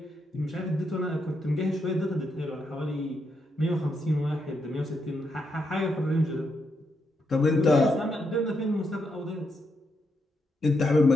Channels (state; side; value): normal; both; correlation 0.81